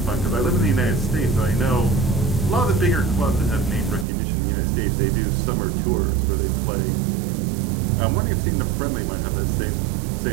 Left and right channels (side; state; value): left; drops out; at 4.0 s